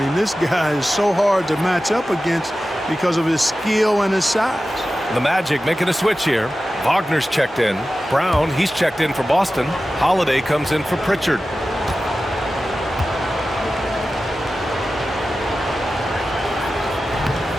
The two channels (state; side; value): normal; both; correlation 0.94